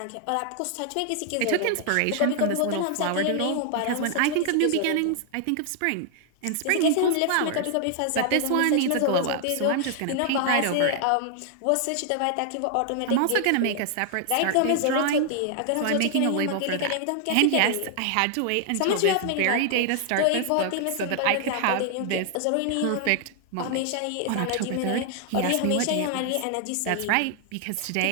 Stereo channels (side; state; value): both; different; correlation 0.00